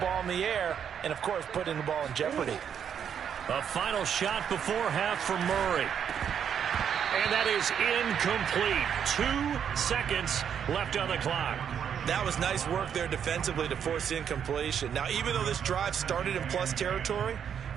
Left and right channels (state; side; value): quieter; left; 8.2 dB